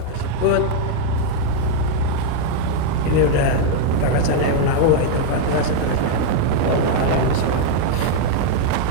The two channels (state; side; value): different; both; correlation 0.01